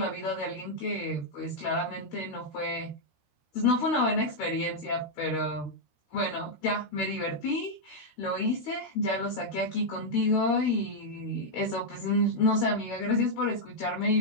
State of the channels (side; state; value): right; late; 13 ms